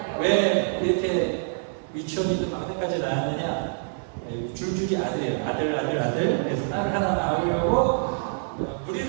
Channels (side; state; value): left; silent; 61 dB below the other